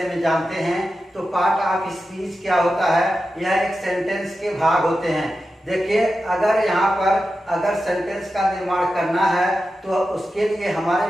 में जानते हैं। तो पार्ट ऑफ स्पीच क्या होता है? यह एक सेंटेंस के भाग होते हैं। देखिए, अगर यहाँ पर अगर सेंटेंस का निर्माण करना है तो उसके लिए हमारे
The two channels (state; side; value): normal; both; correlation 0.91